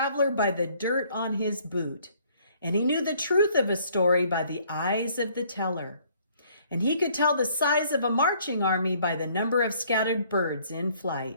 by the dirt on his boot. And he knew the truth of a story by the eyes of the teller. And he could tell the size of a marching army by the number of scattered birds in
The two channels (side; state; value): both; inverted; correlation -0.61